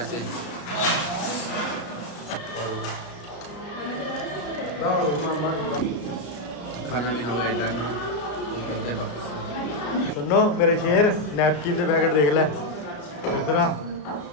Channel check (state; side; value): late; right; 34 ms